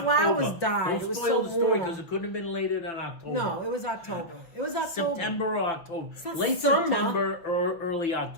Flowers died. Don't spoil the story because it couldn't have been later than October. No, it was October. It was October. September or October. It's not late summer. September or early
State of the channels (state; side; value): late; right; 6.0 ms